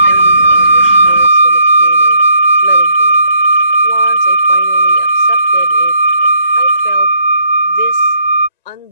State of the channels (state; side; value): inverted; both; correlation -0.72